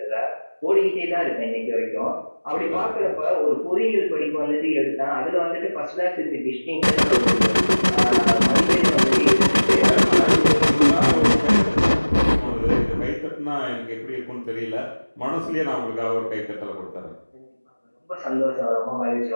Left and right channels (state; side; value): inverted; both; correlation -1.00